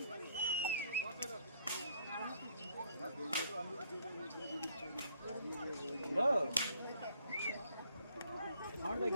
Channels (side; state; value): both; inverted; correlation -0.65